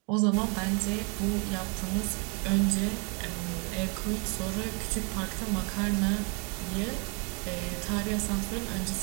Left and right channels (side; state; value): left; quieter; 33.6 dB